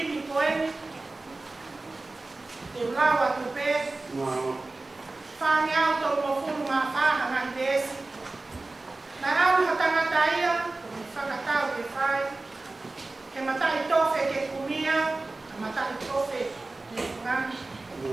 koeni, te ulawa tupe, whangi au tō mo furu ma whaha ngahi desi, na au ha tangata ia, ko mi whakatau ke whai, ke matai tofe ke kumia, ke matai tofe ke ngani.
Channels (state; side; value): quieter; left; 3.2 dB